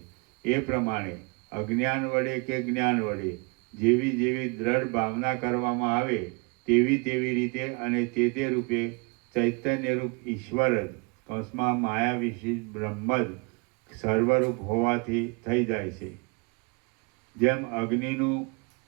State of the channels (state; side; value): quieter; left; 31.3 dB